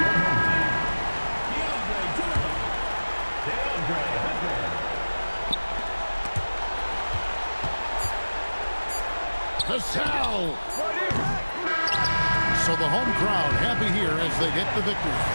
So the home crowd happy here as they get the victory.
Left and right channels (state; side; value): inverted; both; correlation -1.00